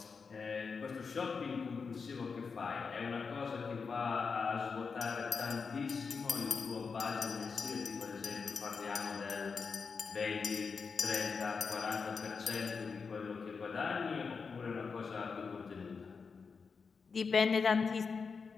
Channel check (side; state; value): right; quieter; 5.2 dB